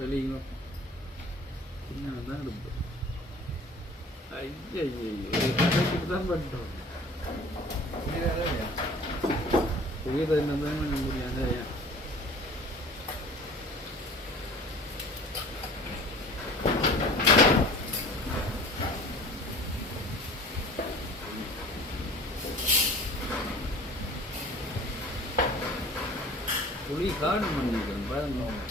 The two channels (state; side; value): normal; both; correlation 0.45